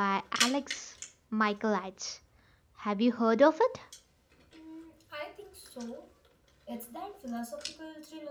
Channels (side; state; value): both; identical; correlation 1.00